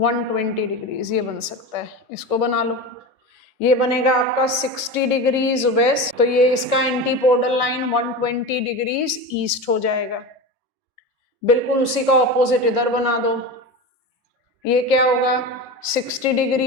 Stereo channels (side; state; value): both; normal; correlation 0.25